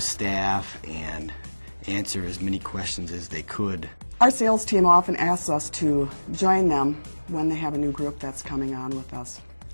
staff and answer as many questions as they could. Our sales team often asks us to join them when they have a new group that's coming on with us.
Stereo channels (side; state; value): both; inverted; correlation -1.00